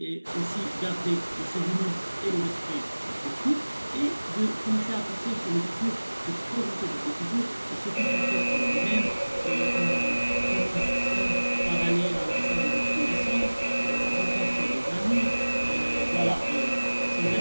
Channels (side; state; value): both; inverted; correlation -1.00